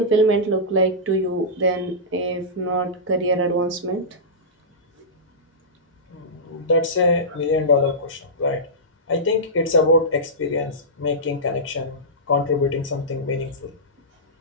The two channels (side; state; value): both; normal; correlation -0.15